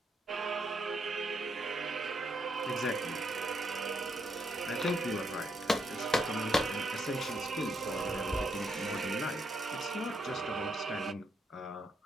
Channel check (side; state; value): both; normal; correlation 0.77